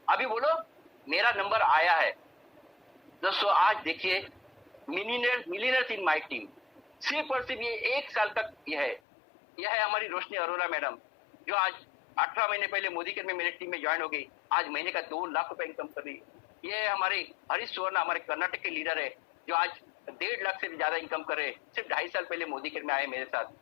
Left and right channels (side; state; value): right; drops out; at 9.0 s